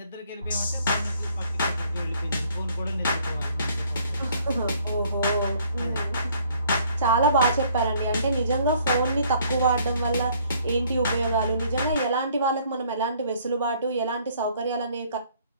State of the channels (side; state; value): both; inverted; correlation -0.61